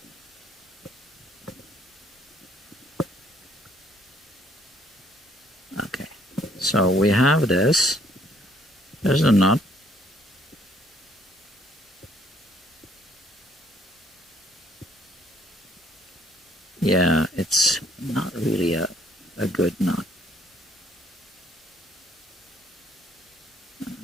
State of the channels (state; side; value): normal; both; correlation 0.64